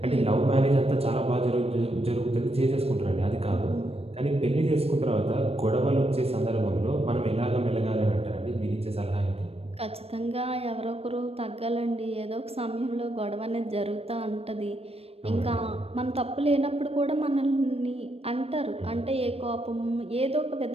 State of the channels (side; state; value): left; late; 0.29 ms